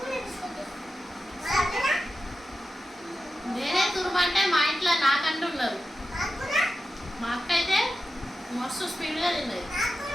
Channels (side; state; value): both; normal; correlation 0.92